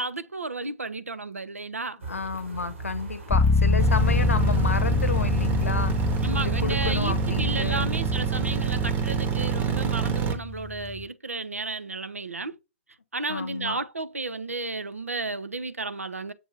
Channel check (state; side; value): normal; both; correlation 0.12